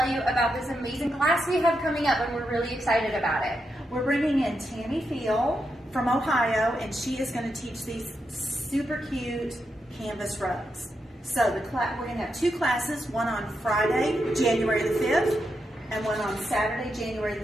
you about this amazing class we have coming up, and we're really excited about it. We're bringing in Tami Pheil from Ohio, and she is going to teach these super cute canvas rugs. So we're going to have two classes, one on Friday, January the 5th, and one on Saturday, January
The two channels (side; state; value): both; normal; correlation 0.84